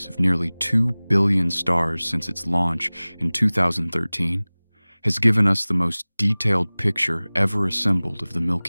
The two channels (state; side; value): inverted; both; correlation -1.00